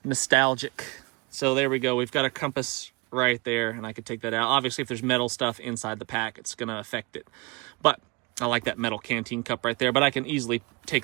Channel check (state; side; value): quieter; left; 27.8 dB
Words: Nostalgic. So there we go. We've got a compass right there, and I could take that out. Obviously, if there's metal stuff inside the pack, it's going to affect it. But I like that metal canteen cup right there, but I can easily